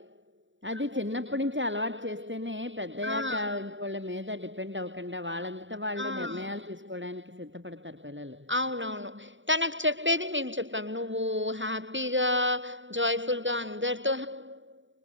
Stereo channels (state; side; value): late; left; 0.55 ms